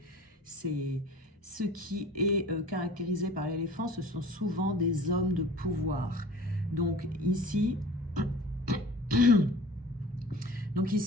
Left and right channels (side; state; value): both; normal; correlation 0.43